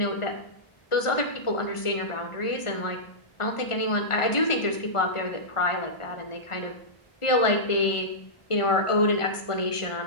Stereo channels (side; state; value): right; late; 1.4 ms